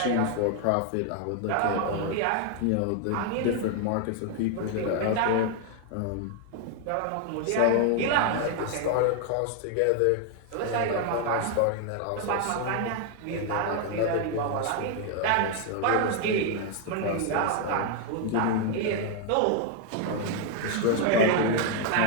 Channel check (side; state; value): both; different; correlation 0.01